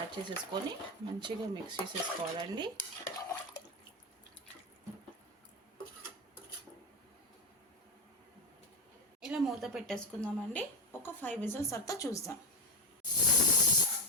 చేసేసుకొని మంచిగా మిక్స్ చేసేసుకోవాలండి. ఇలా మూత పెట్టేసుకుందామండి. ఒక 5 విజిల్స్ తర్వాత చూద్దాం.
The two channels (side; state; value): both; normal; correlation 0.13